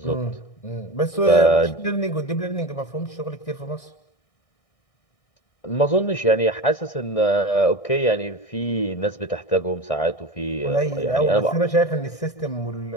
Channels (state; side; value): late; right; 1.6 ms